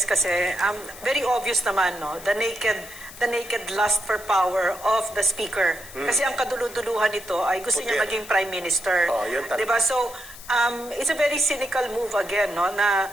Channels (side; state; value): left; noise; hiss, 16 dB below the sound